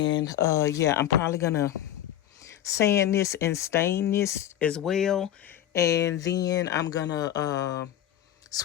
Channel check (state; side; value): quieter; right; 11.6 dB